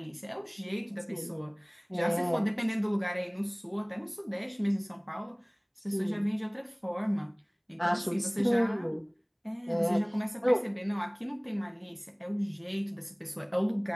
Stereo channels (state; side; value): identical; both; correlation 1.00